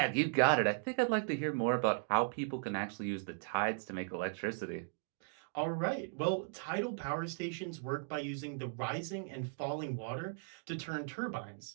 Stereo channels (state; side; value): silent; left; digital silence